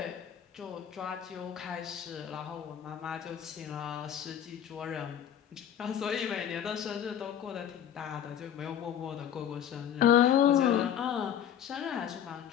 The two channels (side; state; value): right; quieter; 9.7 dB